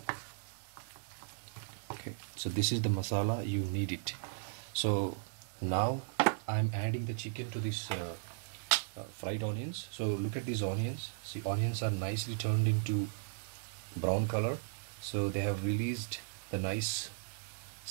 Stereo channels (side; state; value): left; silent; digital silence